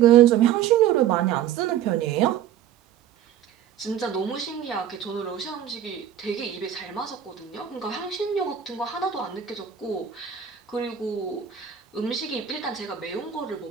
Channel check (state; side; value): quieter; left; 9.9 dB